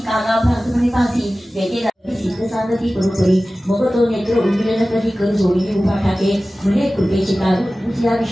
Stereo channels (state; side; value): normal; both; correlation 0.96